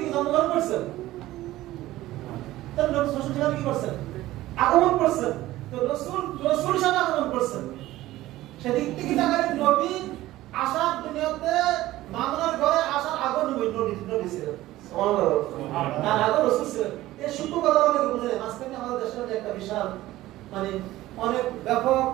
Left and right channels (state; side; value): quieter; left; 16.1 dB